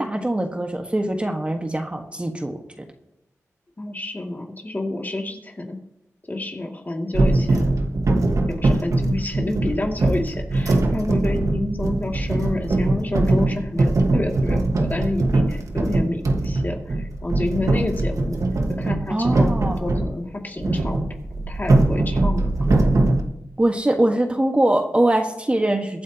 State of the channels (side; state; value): both; normal; correlation 0.94